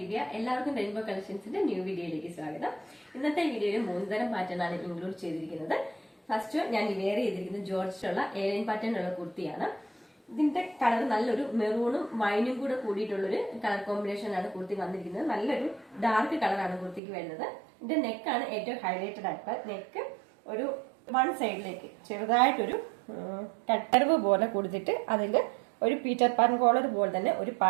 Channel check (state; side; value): drops out; left; at 17.0 s